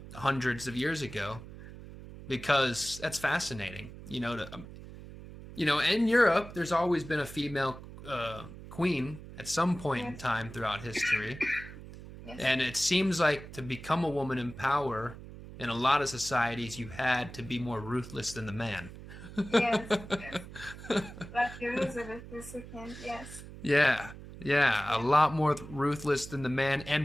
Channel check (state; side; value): noise; right; hum, 14 dB below the sound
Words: hundreds of years ago, because that's fascinating. You know, in Europe, there's always been a female queen at some point in Yes. time throughout history. Yes. And it seems like to become a woman in power in a lot of societies, you had to be more ruthless than the man. Yes. Yes. Like Elizabeth II. Yes. Yeah, yeah, a Yeah. lot more ruthless than the man,